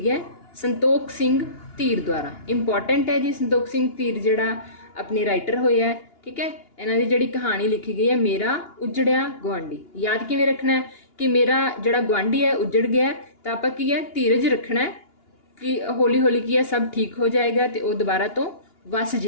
है संतोख सिंह धीर द्वारा। इंपॉर्टेंट है जी, संतोख सिंह धीर जिहड़ा अपने राइटर होए है। ठीक है, इन्हां दी जिहड़ी कहानी लिखी गई है मेरा उजड़िया गुआंढी। याद किवें रखना है कि मेरा जिहड़ा गुआंढी है उजड़ गया है, तो आपां की है धीरज रखना है कि हौली हौली की है सब ठीक हो जाएगा, तो वह दोबारा तो वस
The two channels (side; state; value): right; late; 2.9 ms